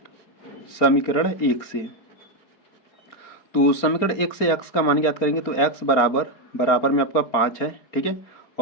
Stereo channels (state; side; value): late; right; 4.3 ms